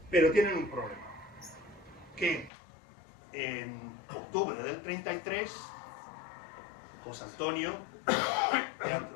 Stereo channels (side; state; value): right; drops out; at 2.5 s